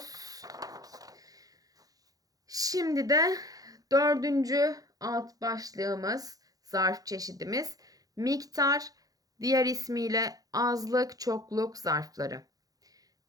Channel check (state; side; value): late; left; 0.18 ms